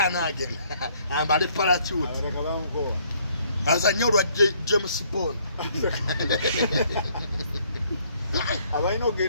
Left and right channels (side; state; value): both; inverted; correlation -0.65